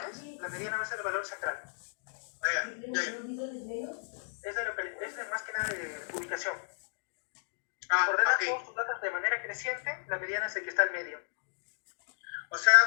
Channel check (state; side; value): silent; right; digital silence